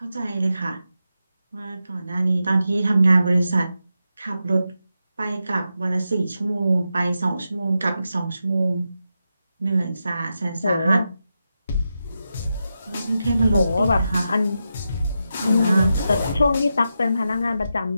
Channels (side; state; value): both; inverted; correlation -0.88